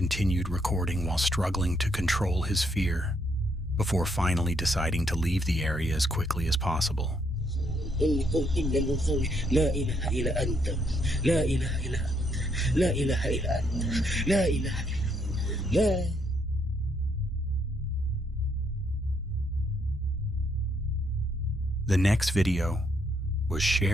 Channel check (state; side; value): normal; both; correlation 0.73